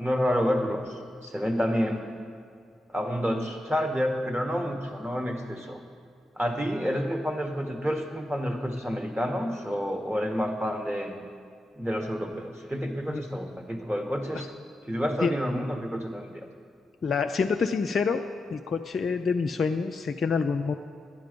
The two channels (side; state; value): both; normal; correlation 0.89